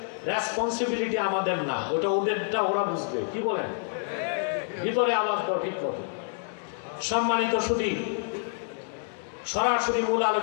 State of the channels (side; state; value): right; silent; 59 dB below the other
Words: রেসপন্সিবিলিটি আমাদের না, ওটা ওদেরটা, ওরা বুঝবে। কি বলেন? ভিতরে আওয়াজ দাও ঠিক মতো। সম্মানিত সুধী, সরাসরি মূল